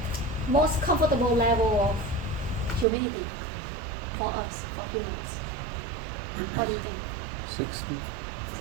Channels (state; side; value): drops out; left; at 2.9 s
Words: most comfortable level of humidity for us, for humans? What do you think? 60.